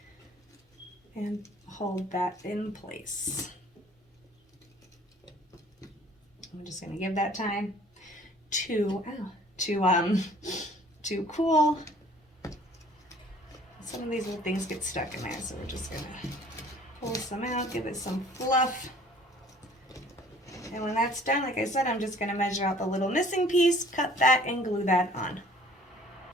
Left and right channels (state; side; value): normal; both; correlation 0.54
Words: and hold that in place. I'm just going to give that time to cool. Some of these little things get stuck in there, so we're just going to pull some out, give it some fluff. And when that's done, like I said, I'm just going to measure out the little missing piece, cut that, and glue that on.